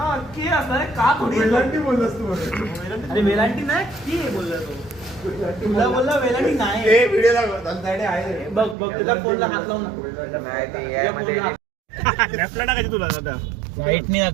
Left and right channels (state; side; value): drops out; left; at 8.8 s